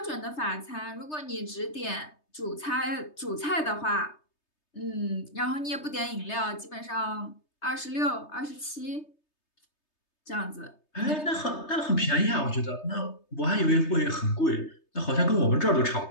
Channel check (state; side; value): late; right; 3.3 ms